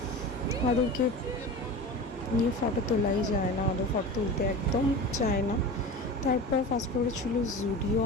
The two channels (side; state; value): both; normal; correlation 0.32